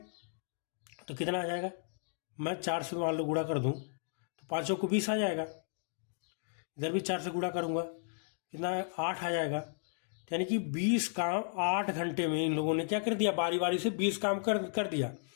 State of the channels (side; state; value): right; silent; digital silence